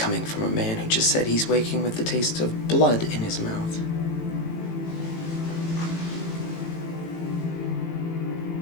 from a man who just said he's waking with the taste of blood in his mouth.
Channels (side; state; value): right; late; 18 ms